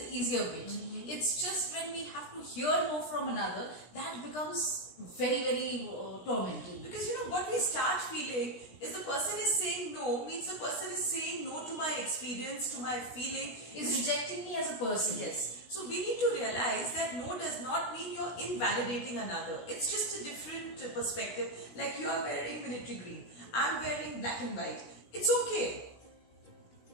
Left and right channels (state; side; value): late; right; 16 ms